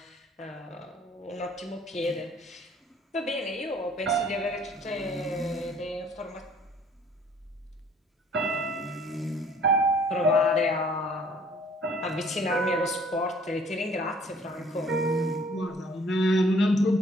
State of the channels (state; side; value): normal; both; correlation 0.57